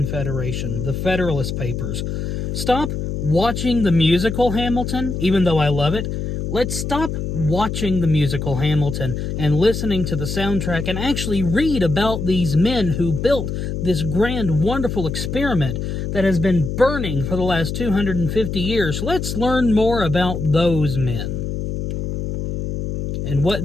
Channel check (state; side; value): noise; left; hum, 4 dB below the sound